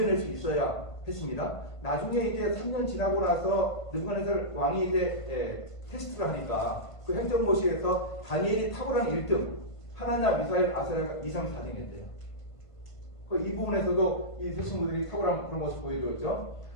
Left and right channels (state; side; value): late; right; 1.5 ms